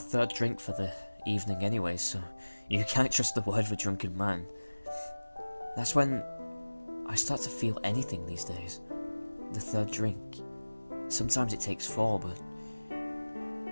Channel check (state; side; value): inverted; both; correlation -1.00